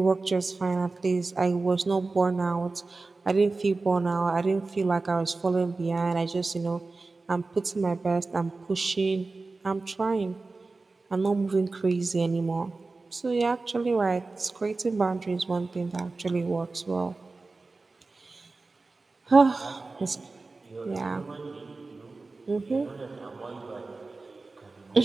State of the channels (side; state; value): left; quieter; 3.6 dB